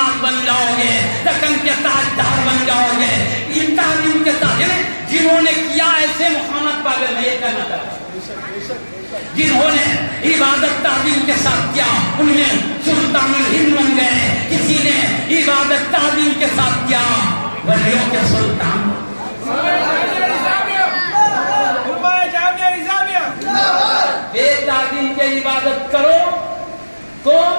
بن جاؤ گے، دکن کے تاجدار بن جاؤ گے۔ یہ تعلیم کے ساتھ جنہوں نے کیا ایسے محمد پاگل میں یہ کہنا چاہتا ہوں، جنہوں نے عبادت تعظیم کے ساتھ کیا ان میں سلطان الہند بن گئے، کسی نے عبادت تعظیم کے ساتھ کیا ولیوں کے سلطان۔ بے تعظیم کے عبادت کرو تو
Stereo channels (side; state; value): both; inverted; correlation -1.00